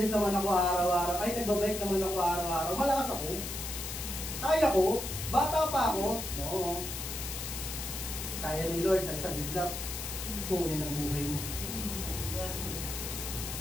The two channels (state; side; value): noise; left; hiss, 6 dB below the sound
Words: naman ako araw-araw, ay, nagbabike naman ako araw-araw, malakas ako. Kaya ko, bata pa ako, no. Kaya ni Lord sa isang bigla, kunin ang buhay mo.